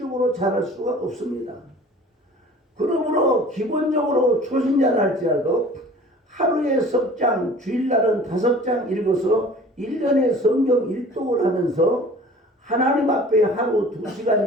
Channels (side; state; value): both; normal; correlation 0.46